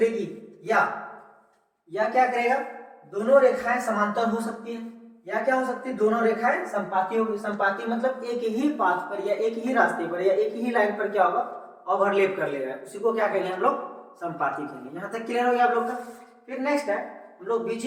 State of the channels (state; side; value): identical; both; correlation 1.00